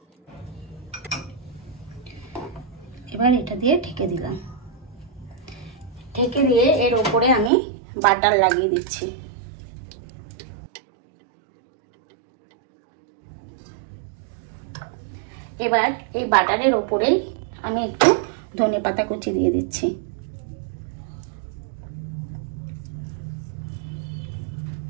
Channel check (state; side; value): drops out; left; at 7.5 s